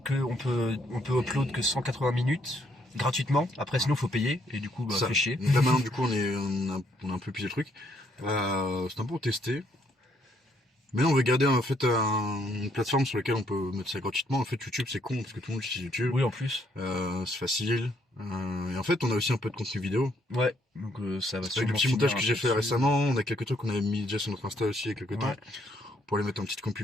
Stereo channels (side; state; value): both; normal; correlation 0.71